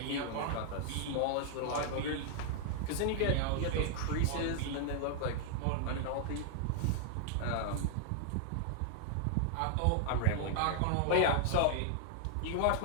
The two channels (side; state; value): both; different; correlation 0.00